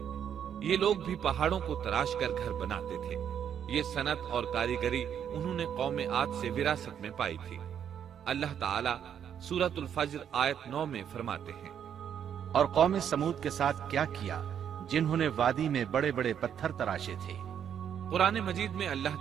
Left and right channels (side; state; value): left; quieter; 8.8 dB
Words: یہ لوگ بھی پہاڑوں کو تراش کر گھر بناتے تھے۔ یہ صنعت اور کاریگری انہوں نے قوم عاد سے وراثت میں پائی تھی۔ اللہ تعالیٰ سورۃ الفجر آیت 9 میں فرماتے ہیں: اور قوم سمود کے ساتھ کیا کیا جنہوں نے وادی میں بڑے بڑے پتھر تراشے تھے۔ قرآن مجید میں